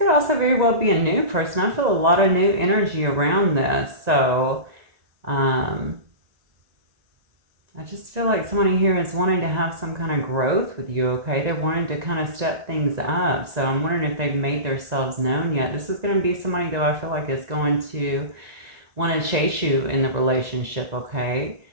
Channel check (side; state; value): left; late; 1.9 ms